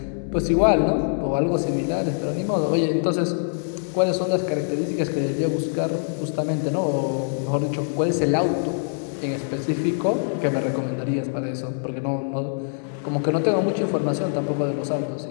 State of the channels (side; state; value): right; silent; 63 dB below the other